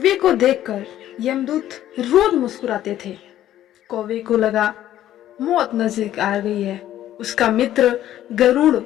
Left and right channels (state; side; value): quieter; right; 12.5 dB